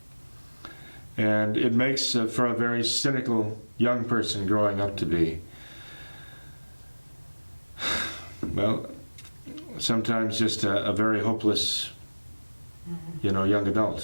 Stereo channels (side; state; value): both; inverted; correlation -1.00